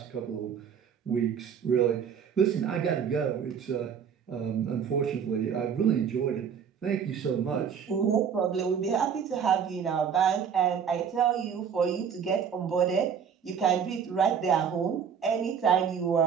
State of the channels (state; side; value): quieter; left; 7.4 dB